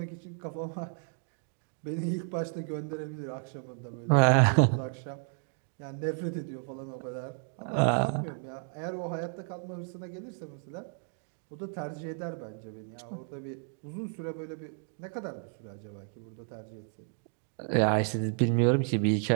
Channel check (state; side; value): silent; left; 56 dB below the other